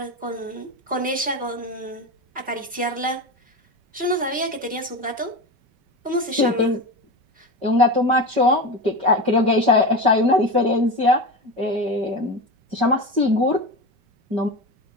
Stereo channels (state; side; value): late; left; 5.2 ms